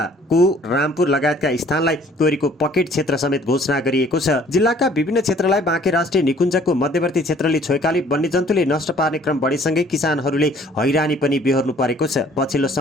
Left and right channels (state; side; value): normal; both; correlation 0.56